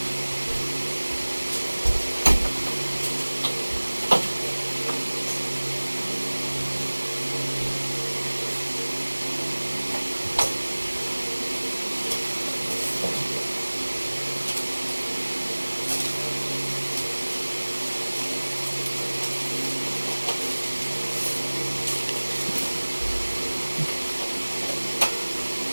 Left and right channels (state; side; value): inverted; both; correlation -1.00